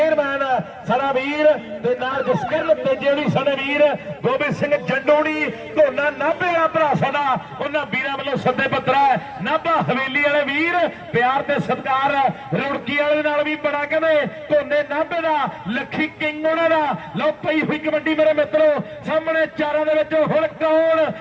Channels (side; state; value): both; identical; correlation 1.00